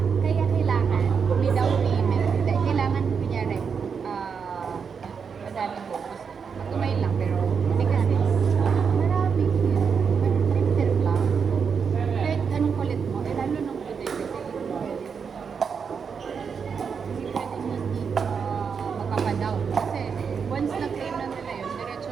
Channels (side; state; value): left; quieter; 6.2 dB